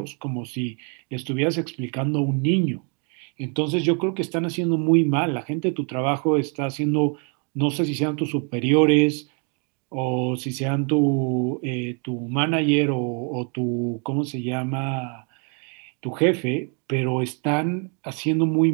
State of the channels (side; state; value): left; quieter; 36.9 dB